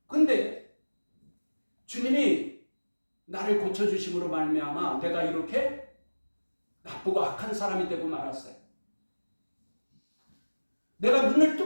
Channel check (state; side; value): inverted; both; correlation -1.00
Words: 근데 주님이 나를 고쳐주심으로 말미암아 내가 이렇게 나쁘고 악한 사람이 되고 말았어요. 내가 눈을